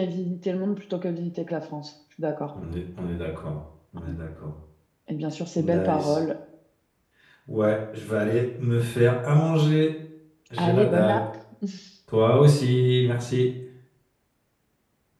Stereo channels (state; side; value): identical; both; correlation 1.00